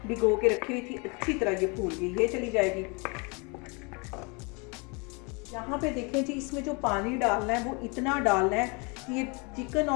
भिगो के रखी हुई थी, अच्छी तरह ये फूल गई, ये चली जाएगी। यहाँ पे देखें जी, इसमें जो पानी डालना है वो इतना डालना है कि ये चिकन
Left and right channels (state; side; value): quieter; right; 30.9 dB